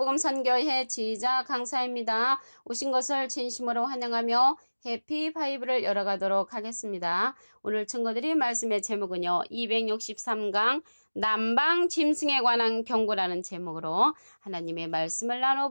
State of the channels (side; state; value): both; inverted; correlation -1.00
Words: 선교회 지휘자 강사입니다. 오신 것을 진심으로 환영하며 해피 바이블을 열어가도록 하겠습니다. 오늘 증거드릴 말씀의 제목은요. 263강 남방 짐승에 관한 경고라는 제목으로 하나님의 말씀을